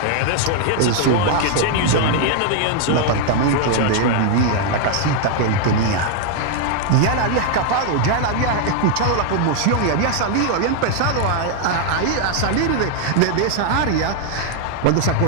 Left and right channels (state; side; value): different; both; correlation 0.00